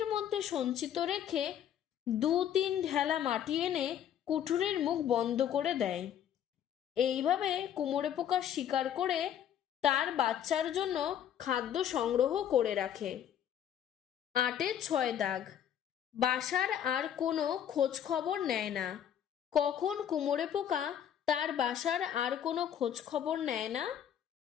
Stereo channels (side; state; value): right; quieter; 9.7 dB